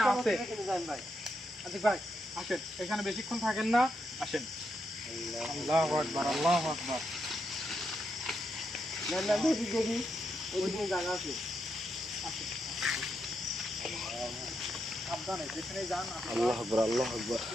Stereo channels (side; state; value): both; normal; correlation 0.82